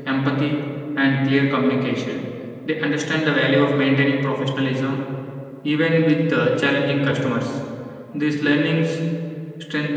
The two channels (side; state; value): both; identical; correlation 1.00